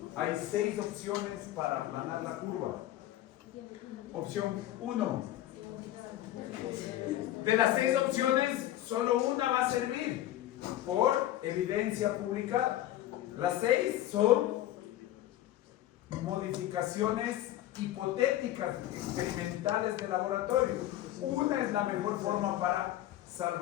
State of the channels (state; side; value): quieter; right; 13.8 dB